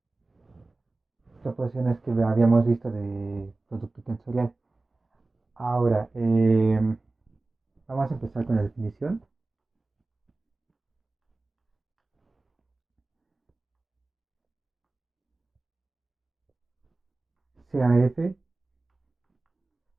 proporciones que habíamos visto de producto tensorial. Ahora, vamos a empezar con la definición. CAF,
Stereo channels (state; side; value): quieter; left; 3.2 dB